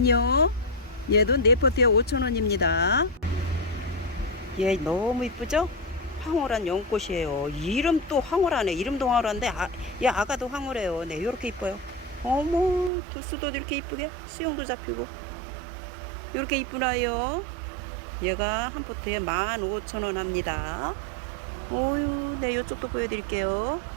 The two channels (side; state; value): left; drops out; at 12.9 s